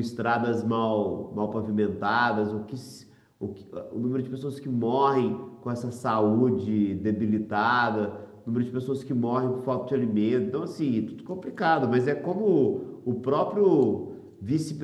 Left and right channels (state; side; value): identical; both; correlation 1.00